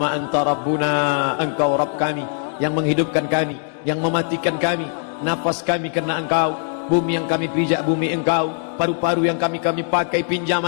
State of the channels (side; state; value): right; silent; digital silence